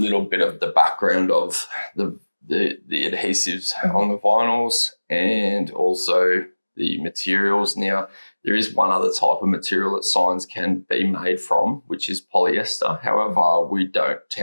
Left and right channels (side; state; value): both; inverted; correlation -1.00